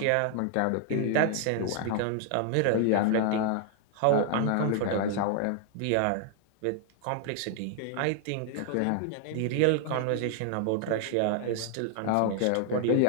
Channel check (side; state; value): both; different; correlation 0.00